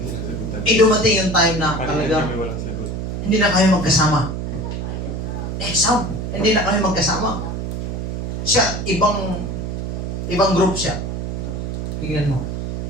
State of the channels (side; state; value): right; noise; hum, 4 dB below the sound